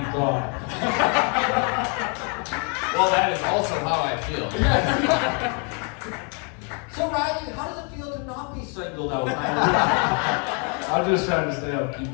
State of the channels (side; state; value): right; quieter; 37.5 dB